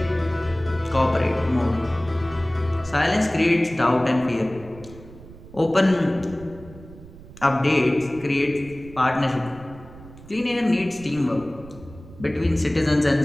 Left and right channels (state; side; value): noise; right; rumble, 19 dB below the sound